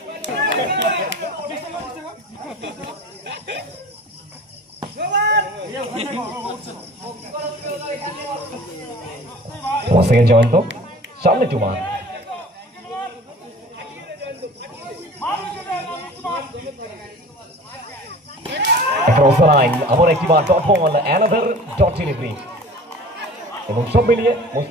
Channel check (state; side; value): normal; both; correlation 0.43